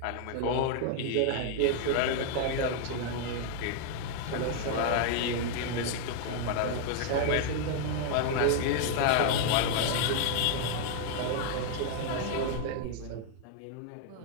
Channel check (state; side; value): different; both; correlation 0.00